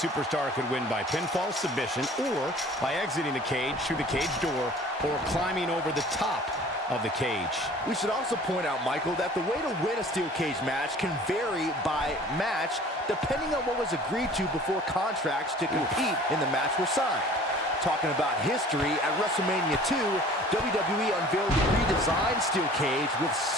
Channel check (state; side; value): normal; both; correlation 0.48